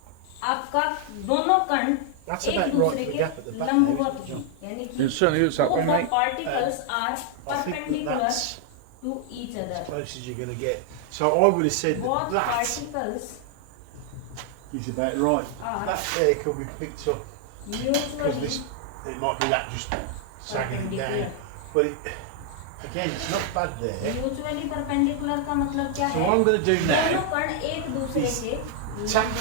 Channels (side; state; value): both; different; correlation 0.00